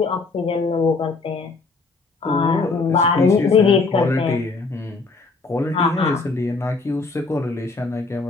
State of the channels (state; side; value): quieter; right; 4.0 dB